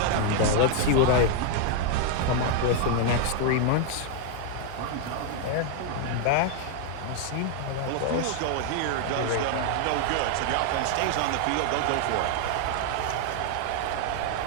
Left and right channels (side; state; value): both; different; correlation 0.00